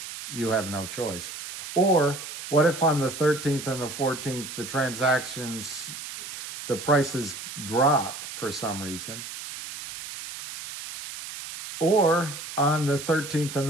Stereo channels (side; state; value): right; noise; hiss, 10 dB below the sound